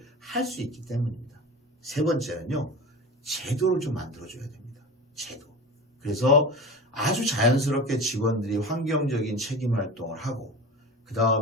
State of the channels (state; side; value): normal; both; correlation 0.32